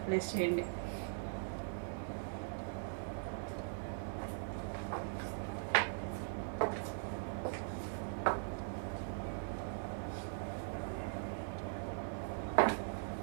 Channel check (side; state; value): left; silent; 50 dB below the other